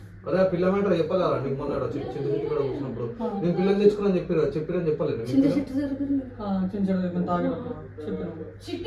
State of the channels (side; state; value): both; identical; correlation 1.00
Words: అదే పిల్ల మ్యాటర్ చెప్పాలా నీకు? మొన్న చిట్టి కూడా కూర్చున్నప్పుడు నేను పిల్లలు తెచ్చుకున్నాను చెప్పిరని చెప్పలేదు.